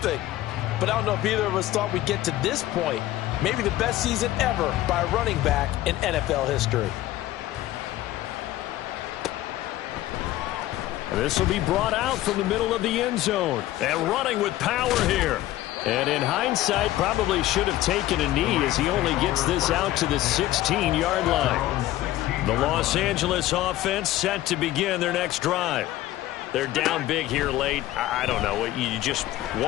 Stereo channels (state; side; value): quieter; right; 15.2 dB